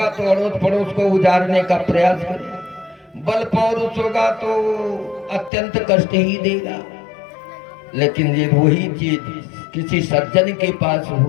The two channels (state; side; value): drops out; right; at 5.5 s